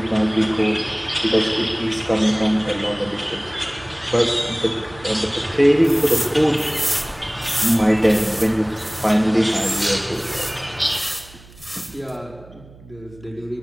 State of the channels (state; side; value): noise; right; hum, 22 dB below the sound